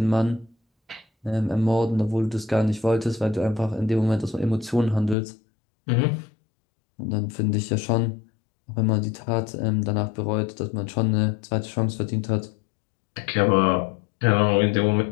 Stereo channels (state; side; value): drops out; right; at 5.2 s